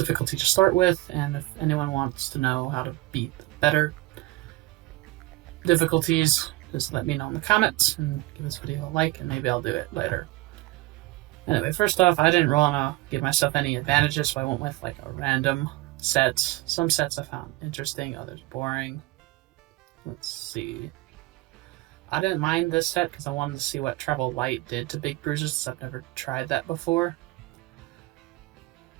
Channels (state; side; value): quieter; left; 20.2 dB